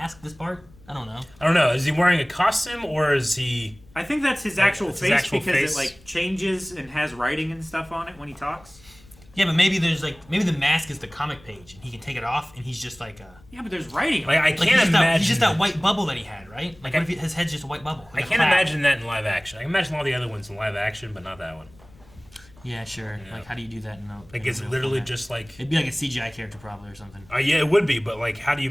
This part? I don't know. I don't know. Is he wearing a costume or is he? I think that's his actual It's his face actual because face. it like changes and has writing and stuff on it when he talks. Yeah, but maybe there's like maybe the mask is the comic page and he can take it off and he's just like Yeah, but there's writing. Like I like can't he's just, imagine. that, he's just that white bubble that he had, right? Like I- what if his head's just a white bubble? I like a can't cloud? imagine that in live action. I can imagine all the other ones in live action, but not that one. Yeah, sure. Yeah. Like how do you do that in a Like in a it's real literally format? just like. It'd be like a CGI character probably or something. Yeah, it would be, but like, how do you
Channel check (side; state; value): left; noise; rumble, 25 dB below the sound